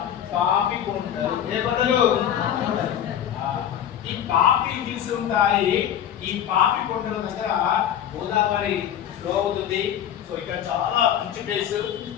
పాపి కొండలు, ఏ కొండలు, ఈ పాపి హిల్స్ ఉంటాయి. ఈ పాపి కొండల దగ్గర గోదావరి ఫ్లో అవుతుంది. సో ఇక్కడ చాలా మంచి ప్లేస్.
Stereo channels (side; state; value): right; quieter; 10.1 dB